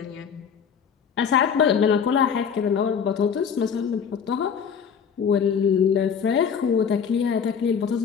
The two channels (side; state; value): right; quieter; 7.1 dB